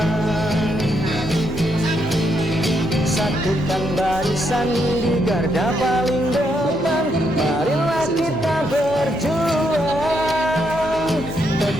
Satukan barisan di garda paling depan, marilah kita berjuang.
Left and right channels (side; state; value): both; normal; correlation 0.77